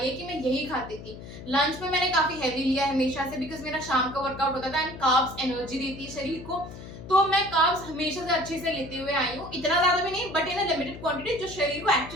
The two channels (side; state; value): left; noise; hum, 13 dB below the sound